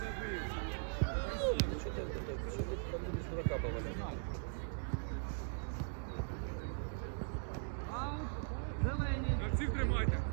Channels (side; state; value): left; silent; digital silence